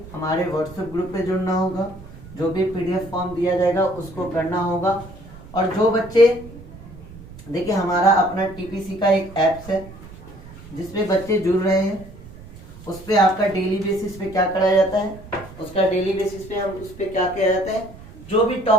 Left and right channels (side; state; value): right; noise; rumble, 17 dB below the sound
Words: हमारे व्हाट्सएप ग्रुप पे जुड़ना होगा, जो भी PDF फॉर्म दिया जाएगा उसको करना होगा। और जो बच्चे, देखिए हमारा अपना TPC का एक ऐप्स है जिसपे बच्चे जुड़ रहे हैं, उस पर आपका डेली बेसिस पे क्या कराया जाता है, उसका डेली बेसिस पे हम उस पर क्या किया जाता है, जो भी